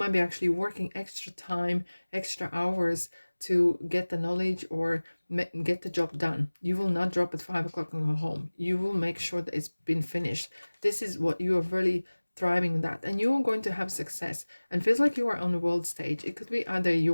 be actually working extra time, extra hours to get the knowledge or get the job done. You will not drop at 5 o'clock and go home. You will make sure that it's been finished. This is what you are really thriving in, that, and you're going to have success. And feels like you are on the world stage. It could be either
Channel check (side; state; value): both; inverted; correlation -1.00